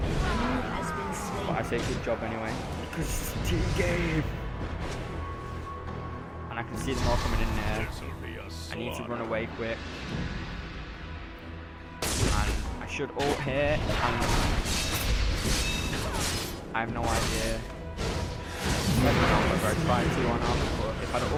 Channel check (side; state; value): both; identical; correlation 1.00